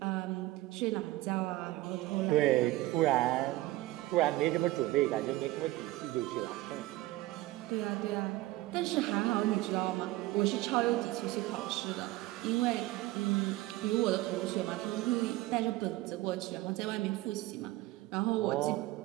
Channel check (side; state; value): left; quieter; 17.9 dB